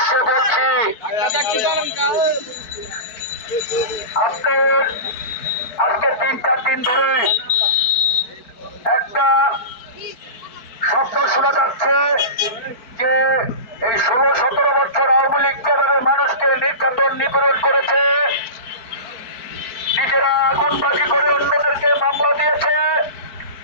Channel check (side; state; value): right; late; 4.6 ms